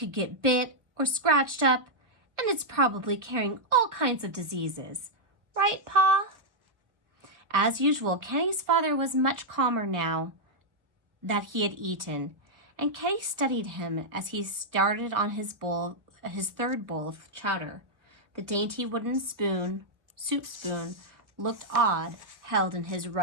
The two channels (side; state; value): left; late; 1.1 ms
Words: get bit or scratched up, and it's probably carrying all kinds of diseases. Right, Pa?" As usual, Kenny's father was much calmer now that he had eaten, and Kenny studied him as he started on his third bowl of chowder. The dainty wooden soup spoon, looked odd, held in his